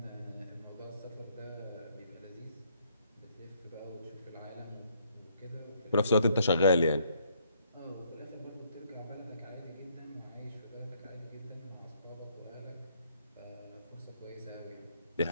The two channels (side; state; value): both; inverted; correlation -0.68